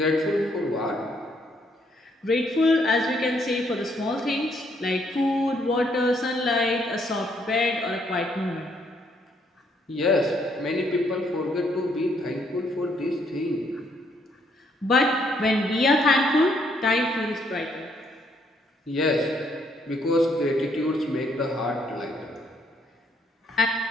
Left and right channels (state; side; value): normal; both; correlation 0.70